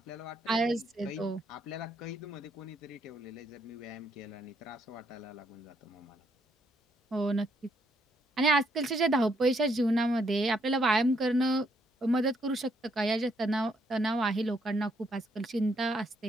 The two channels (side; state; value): both; normal; correlation 0.73